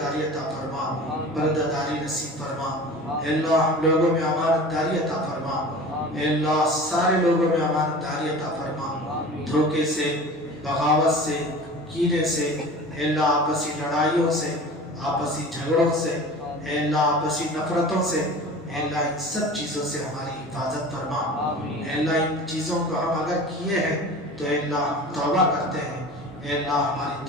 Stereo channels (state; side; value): normal; both; correlation 0.38